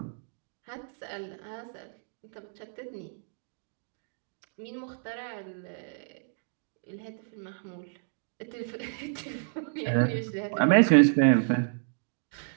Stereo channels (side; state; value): left; silent; digital silence